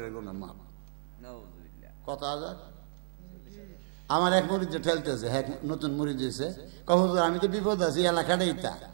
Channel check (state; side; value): silent; left; digital silence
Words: গুনাহ মাপ। কত হাজার? আমার এক মুরিদ ঠেলতেছে, হ্যাঁ নতুন মুরিদ হয়েছে, হুজুর আমি তো বিপদ আছি, এলাকাটা ইটা